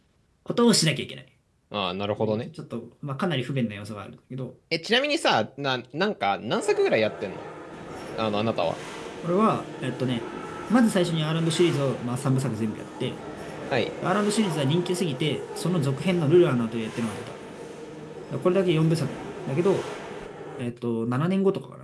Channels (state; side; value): identical; both; correlation 1.00